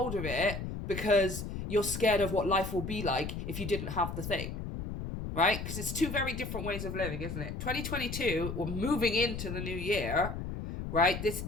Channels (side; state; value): left; noise; rumble, 6 dB below the sound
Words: of it because you're scared of what life will be like if you didn't have the thing, right? Because it's two very different ways of living, isn't it? 2022, we're moving into the new year, right? This